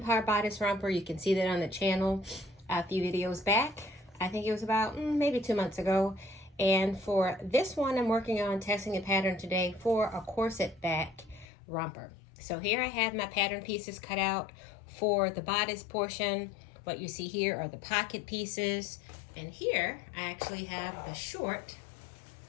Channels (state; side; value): drops out; right; at 11.5 s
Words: bodice romper. You can see that on the channel a few videos back. I think it was about maybe 2 months ago. And for this one, I'm working on testing a pattern today for a corset back romper. So here I have my pattern pieces cut out for the bodice portion. What you see here are the pocket pieces. And here I actually have the short